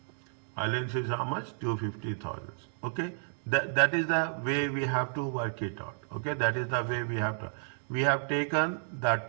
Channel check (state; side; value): silent; left; digital silence